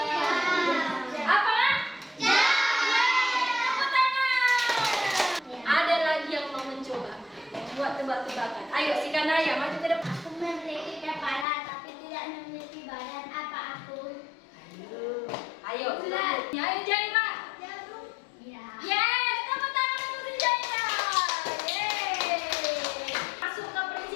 Apa? Tepuk tangan. Ada lagi yang mau mencoba buat tebak-tebakan. Ayo si Kanaya maju ke depan. Aku memiliki kepala tapi tidak memiliki badan. Apa aku? Ayo, ayo Jaira. Ya. Yes, tepuk tangan untuk si Jaira. Yeay. Masuk ke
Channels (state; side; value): drops out; right; at 11.5 s